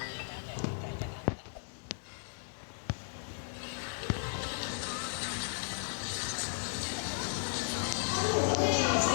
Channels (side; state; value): right; silent; digital silence